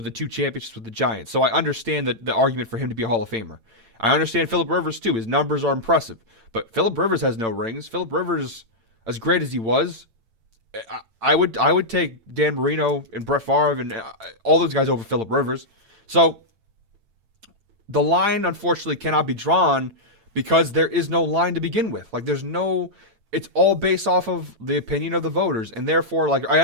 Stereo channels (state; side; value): late; left; 8.9 ms